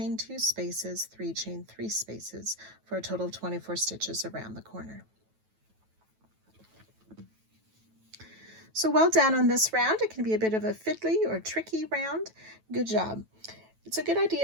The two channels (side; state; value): left; late; 9.2 ms